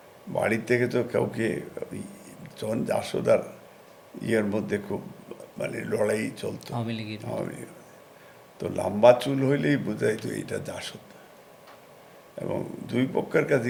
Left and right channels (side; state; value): both; identical; correlation 1.00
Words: বাড়ির থেকে তো কাউকে তখন জাসদার মধ্যে খুব মানে লড়াই চলতো আওয়ামী লীগের। তো লম্বা চুল হইলেই বোঝাই তো এইটা জাসদ, এবং দুই পক্ষের কাছে